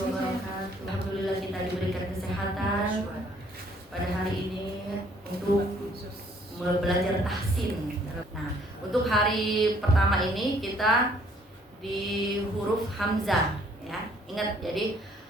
Alhamdulillah kita diberikan kesehatan pada hari ini untuk belajar tahsin. Nah, untuk hari pertama ini kita di huruf hamzah, ya. Ingat, jadi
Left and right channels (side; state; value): both; normal; correlation 0.62